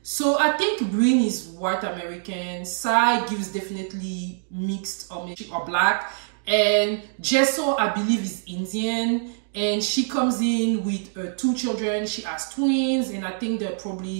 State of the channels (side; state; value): left; silent; digital silence